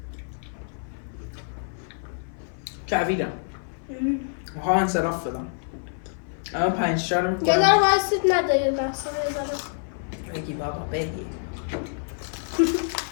کویدم. میخوام انصراف بدم. الان 5 تا رو یه میکنم. ذره وایسید نده یه لحظه یه ذره. بگی بابا بگی.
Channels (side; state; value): right; silent; 55 dB below the other